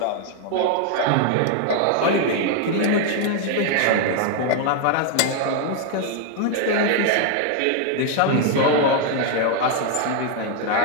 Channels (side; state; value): both; different; correlation 0.00